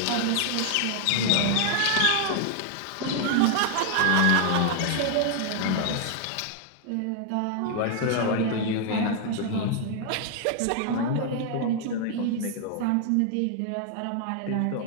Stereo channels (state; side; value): different; both; correlation 0.00